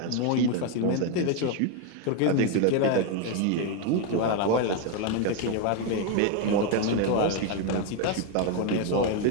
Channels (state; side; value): different; both; correlation 0.01